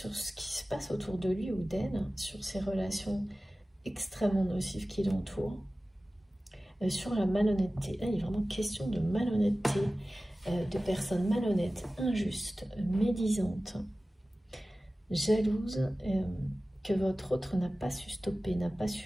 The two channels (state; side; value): normal; both; correlation 0.96